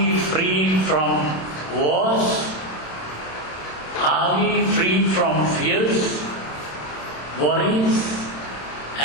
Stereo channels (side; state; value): right; late; 27 ms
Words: free from wars? Are we free from fears, worries,